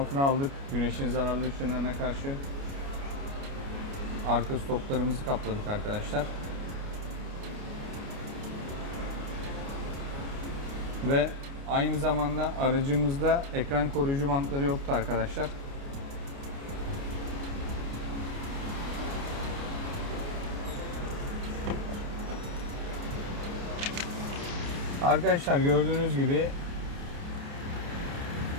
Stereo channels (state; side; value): late; left; 29 ms